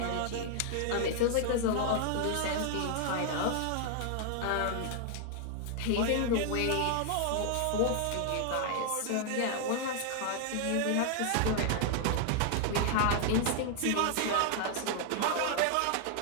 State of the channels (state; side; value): different; both; correlation 0.00